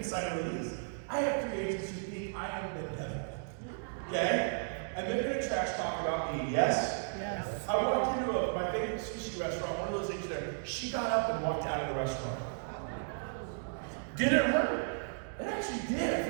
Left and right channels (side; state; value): left; silent; digital silence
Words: sign a release. I have 3 agents who think I am the devil. Okay? And they're going to trash talk about me, yes? Yes. I walked into my favorite sushi restaurant, one of those agents there. She got up and walked out of the restaurant. Did it hurt? It actually did. I